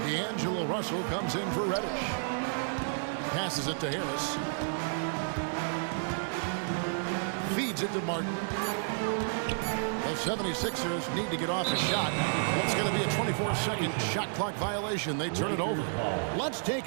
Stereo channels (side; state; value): left; silent; digital silence